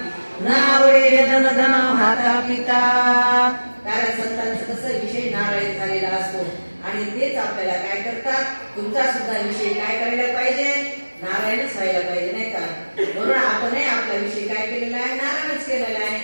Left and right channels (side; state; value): both; inverted; correlation -1.00